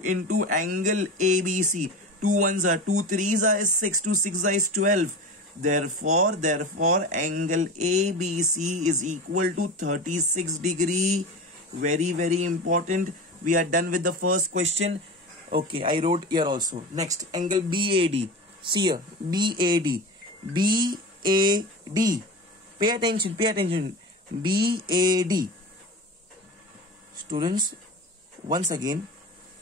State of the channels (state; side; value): normal; both; correlation 0.29